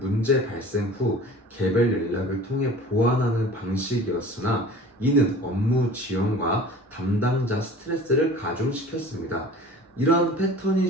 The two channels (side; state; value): both; normal; correlation 0.42